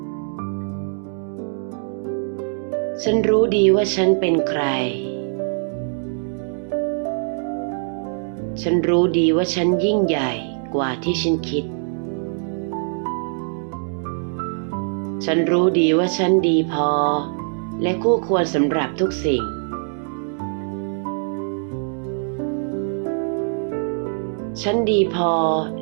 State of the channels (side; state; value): left; silent; 64 dB below the other